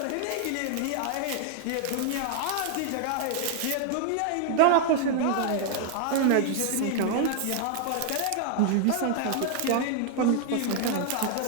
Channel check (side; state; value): both; different; correlation 0.00